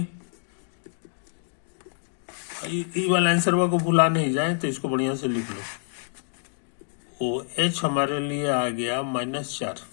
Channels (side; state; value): right; silent; digital silence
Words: ये वाला आंसर को भुला नहीं जाए, तो इसको बढ़िया से लिख लो। OH हमारे लिए आ गया -4,